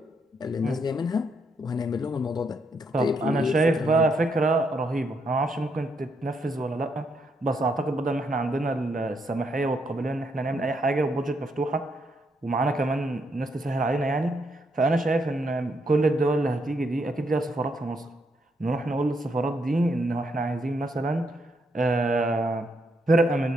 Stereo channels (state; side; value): normal; both; correlation 0.77